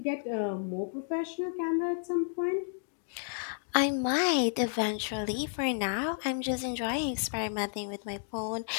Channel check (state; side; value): silent; right; digital silence